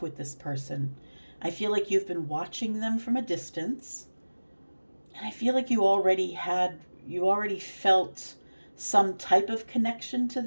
with this person. I feel like you've been watching them from a distance. And I feel like you already felt some type of connection to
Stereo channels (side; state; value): both; inverted; correlation -1.00